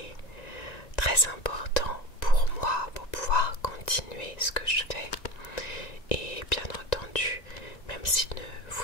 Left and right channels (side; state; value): right; late; 1.9 ms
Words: très important pour moi pour pouvoir continuer ce que je fais. Et bien entendu, même si